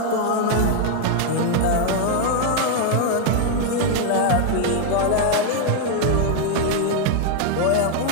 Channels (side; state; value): both; different; correlation 0.00